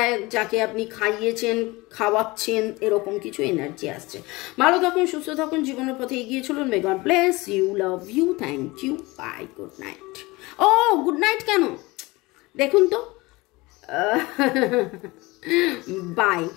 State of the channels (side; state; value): right; quieter; 22.5 dB